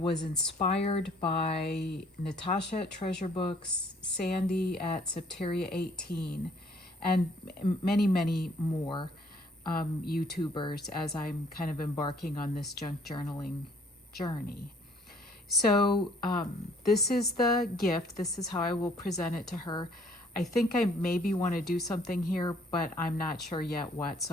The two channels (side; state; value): both; normal; correlation 0.61